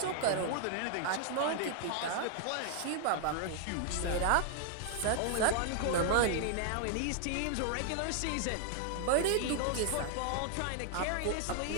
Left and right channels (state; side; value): different; both; correlation 0.00